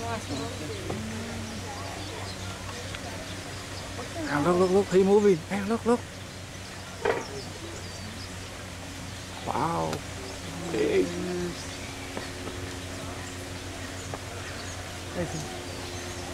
last one. Look, he's moving. Hey, look. Wow. Big.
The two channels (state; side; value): identical; both; correlation 1.00